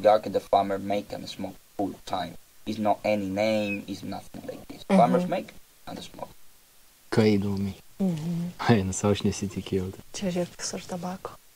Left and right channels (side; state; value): both; identical; correlation 1.00